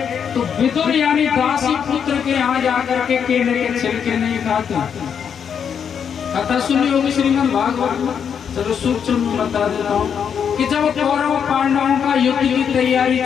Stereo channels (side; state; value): right; quieter; 7.5 dB